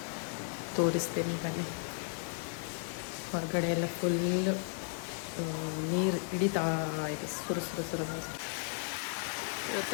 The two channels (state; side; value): silent; right; 55 dB below the other